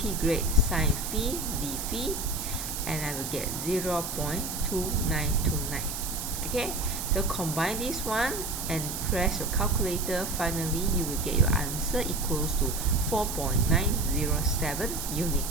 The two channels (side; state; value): right; noise; hiss, 5 dB below the sound